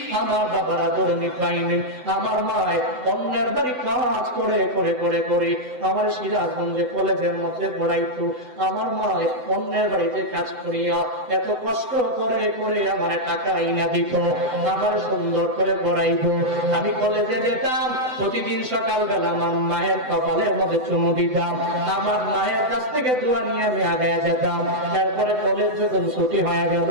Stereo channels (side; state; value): left; late; 7.9 ms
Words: আমার বাবার আদর আমি পাইনি। আমার মায় অন্যের বাড়ি কাজ করে করে করে করে আমার সিরাজগঞ্জে কলেজের মধ্যে পড়াইতো। আমার মায় অন্যের বাড়িতে কাজ করিয়া এত কষ্ট করে করে আমার টাকা আইনা দিত, আমার সুন্দর করে পড়াইতো। আমি কলেজে যেতাম, প্রতিদিন সকালবেলা আমার মায়ের কপালের মধ্যে চুমু দিতাম, আমার মায়ের কাছ থেকে দোয়া নিয়ে আমি আগে যেতাম। তারপরে কলেজ যখন ছুটি হয়ে গেল